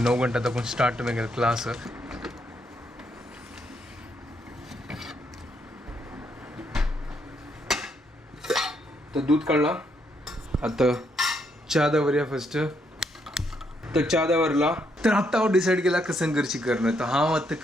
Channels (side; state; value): both; normal; correlation 0.75